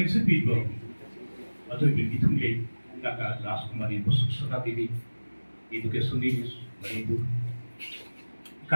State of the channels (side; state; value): both; inverted; correlation -1.00